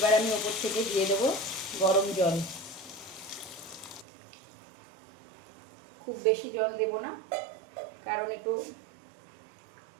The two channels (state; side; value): drops out; left; at 4.0 s